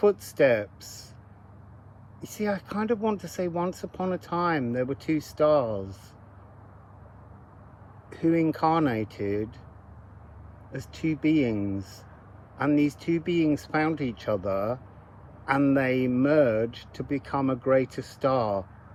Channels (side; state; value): both; identical; correlation 1.00